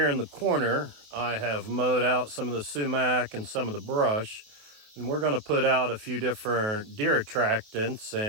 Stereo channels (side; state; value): left; late; 28 ms